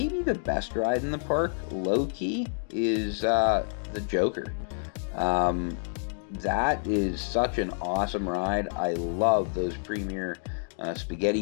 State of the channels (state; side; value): silent; right; digital silence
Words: the best ride in the park, low-key, is the Joker. That is such an awesome ride. I love those premier